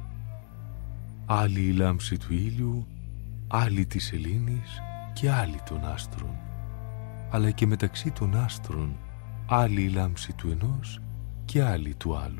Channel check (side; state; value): right; silent; 58 dB below the other